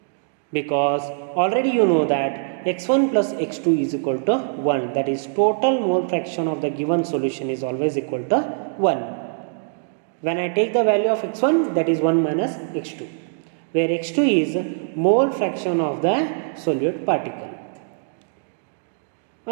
because already you know that X1 plus X2 is equal to 1, that is total mole fraction of the given solution is always equal to 1. When I take the value of X1, that is 1 minus X2, where X2 is mole fraction of the solute particle.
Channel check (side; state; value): left; silent; digital silence